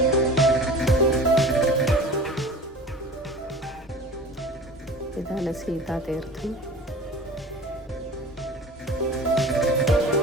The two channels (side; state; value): both; normal; correlation 0.38